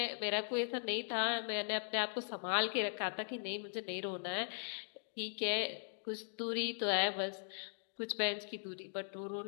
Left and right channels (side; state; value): right; silent; digital silence